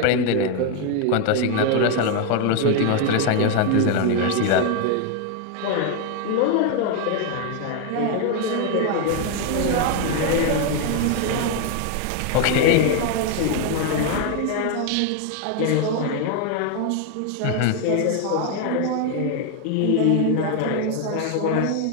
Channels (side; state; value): both; different; correlation 0.01